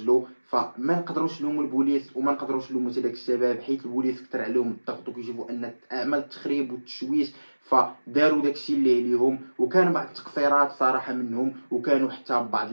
فما نقدروش نلوموا البوليس وما نقدروش نلوموا حتى داك الشباب حيت البوليس كثر عليهم الضغط وكيشوفوا ان اعمال التخريب والتشويش، فداروا داكشي اللي عليهم. وكان بعض التقصيرات صراحه منهم، وكانوا حتى بعض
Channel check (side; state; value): both; inverted; correlation -1.00